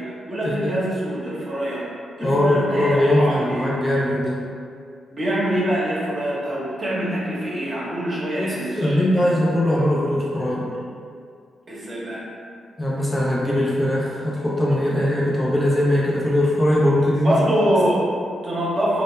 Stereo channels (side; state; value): both; normal; correlation 0.86